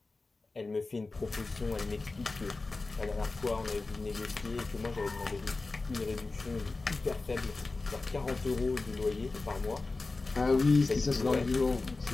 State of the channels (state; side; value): quieter; right; 3.6 dB